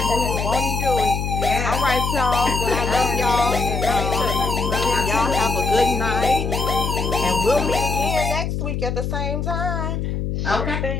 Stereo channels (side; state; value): left; noise; hum, 2 dB below the sound